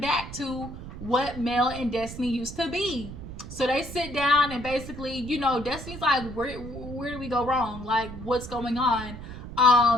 back to what Mel and Destiny used to be. So they sit down and basically, Destiny's like, where do we go wrong? Like, what's going on?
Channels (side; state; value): right; noise; rumble, 11 dB below the sound